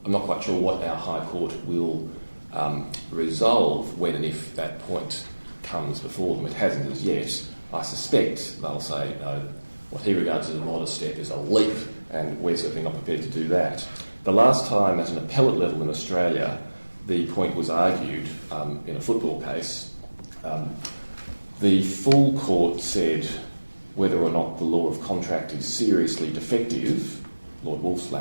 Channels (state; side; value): inverted; both; correlation -1.00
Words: I'm not quite sure what our High Court will resolve when and if that point comes before them. It hasn't as yet. I suspect they'll say, no, what he regards as a modest step is a leap, and we're certainly not prepared to do that. The last time at an appellate level in Australia the point was argued in a football case, the full court said whether or not the law of contract is seriously defective, Lord Wolf's